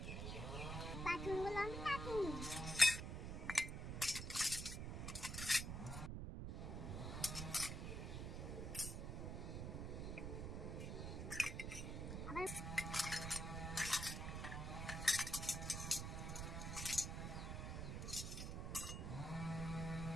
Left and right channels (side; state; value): right; noise; rumble, 3 dB below the sound